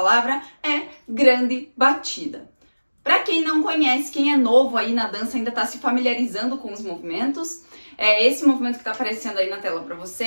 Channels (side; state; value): both; inverted; correlation -1.00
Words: é grande batida. Para quem não conhece, quem é novo aí na dança, ainda está se familiarizando com os movimentos, esse movimento que está aparecendo aí na tela para